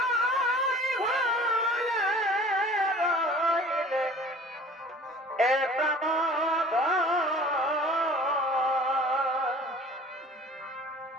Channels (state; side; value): normal; both; correlation 0.46